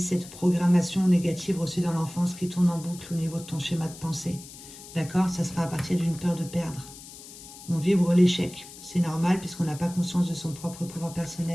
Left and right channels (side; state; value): left; noise; hiss, 16 dB below the sound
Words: programmation négative reçue dans l'enfance qui tourne en boucle au niveau de ton schéma de pensée. D'accord? Ça sera à partir d'une peur de perdre. On vibre l'échec. C'est normal puisqu'on n'a pas conscience de son propre pouvoir